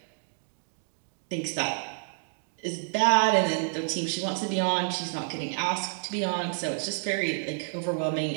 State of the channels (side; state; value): left; silent; 58 dB below the other